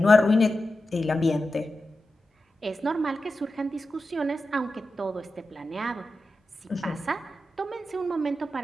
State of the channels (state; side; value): normal; both; correlation 0.91